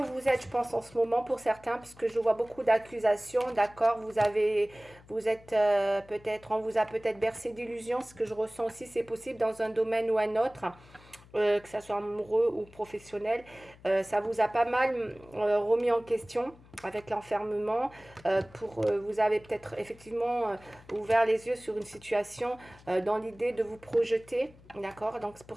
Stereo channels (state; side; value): noise; left; hum, 24 dB below the sound